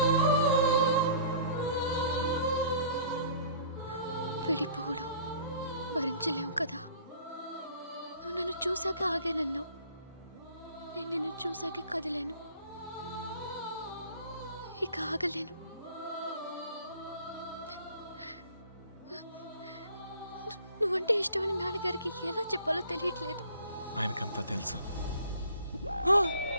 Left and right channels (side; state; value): both; inverted; correlation -0.49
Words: విడిపోవడం భరించలేము కదా. నువ్వు నన్ను చూసాక ఆగానన్నావు, నేను నిన్ను చూసాక కదిలేను. ఇక ఆగలేను. నువ్వంటే ఇష్టమని నాన్నగారికి ఎలా చెప్పాలో తెలియట్లేదు. ఆయనకంతా తెలుసు.